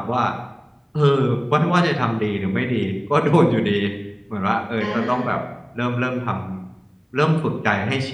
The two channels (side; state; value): both; identical; correlation 1.00